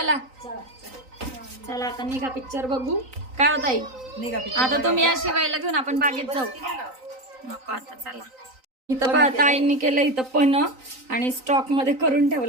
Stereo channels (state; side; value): late; left; 3.9 ms